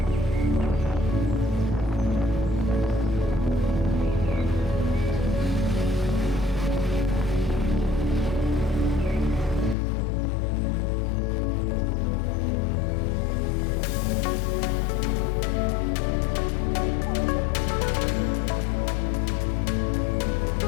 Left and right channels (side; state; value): right; drops out; at 9.8 s